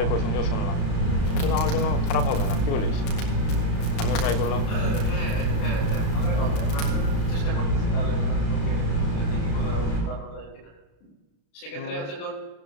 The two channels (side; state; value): right; late; 36 ms